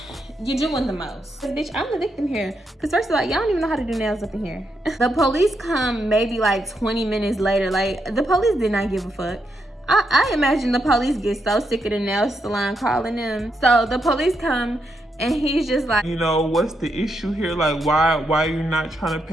you're doing the most. Bitch, I'm the victim here. Cause first of all, y'all don't even know how to do nails up in here. The police come maybe like 20 minutes later. Like, the police did not give a fuck. I imagine the police get so sick of the nail salon calling them. So the police come and he's just like, you know, what's the issue here? Like, why you're not trying to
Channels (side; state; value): both; normal; correlation 0.81